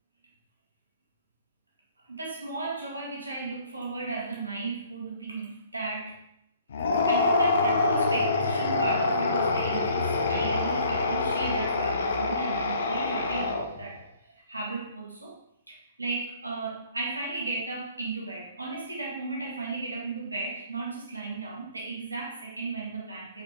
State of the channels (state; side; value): inverted; both; correlation -0.58